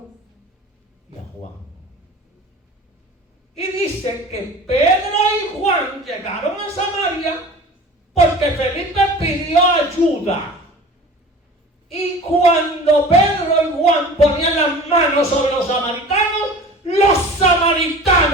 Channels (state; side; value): normal; both; correlation 0.40